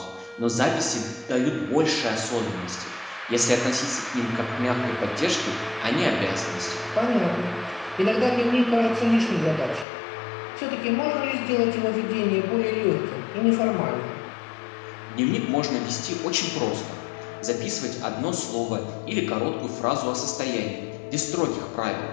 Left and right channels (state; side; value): drops out; right; at 9.9 s